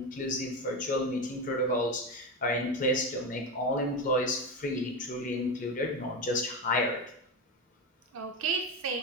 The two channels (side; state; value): both; normal; correlation 0.17